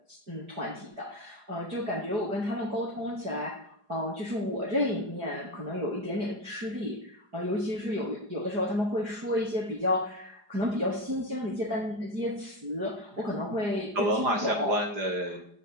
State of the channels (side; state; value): left; late; 4.9 ms